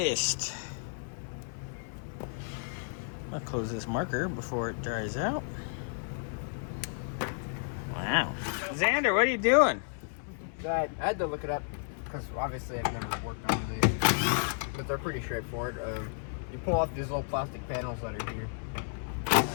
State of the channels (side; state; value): right; silent; 56 dB below the other